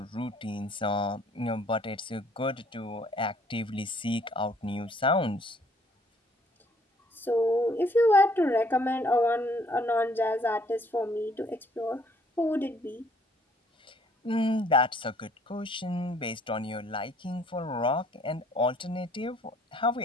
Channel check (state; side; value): normal; both; correlation 0.62